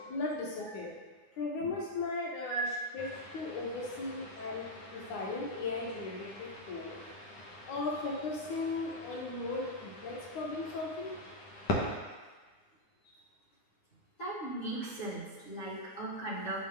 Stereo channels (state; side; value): late; right; 9.7 ms